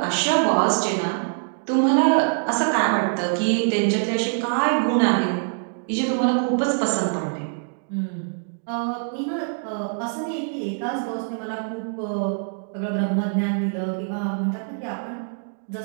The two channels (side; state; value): left; silent; digital silence